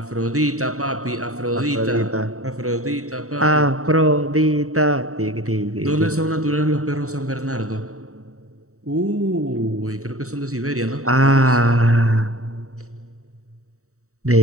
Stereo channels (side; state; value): left; late; 0.64 ms